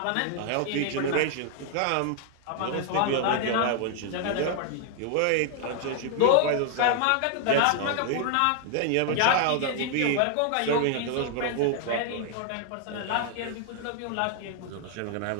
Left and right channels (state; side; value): different; both; correlation 0.00